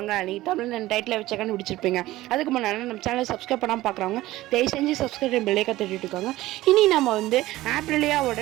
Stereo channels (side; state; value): left; quieter; 16.8 dB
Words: நீங்கள் தமிழ் டைட்டில் வச்ச கண்டுபிடிச்சிருப்பீங்க. அதுக்கு முன்னாடி நம்ம சேனலை சப்ஸ்கிரைப் பண்ணாமல் பார்க்குறவங்க தயவு செஞ்சு சப்ஸ்கிரைப் பெல்லைக்கை தட்டிட்டு இருக்காங்க. இனி நம்ம ஆப்ரிலியாவோட